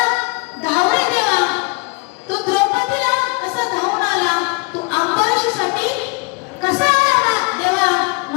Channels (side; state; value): right; quieter; 29.1 dB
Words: धावरे देवा, तू द्रौपदीला कसा धावून आला, तू अंबरीषीसाठी कसा आला देवा,